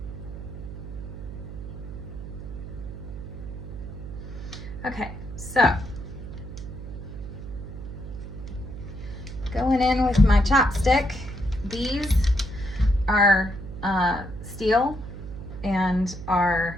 Okay, so going in with my chopstick. These are steel and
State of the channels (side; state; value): right; noise; hum, 10 dB below the sound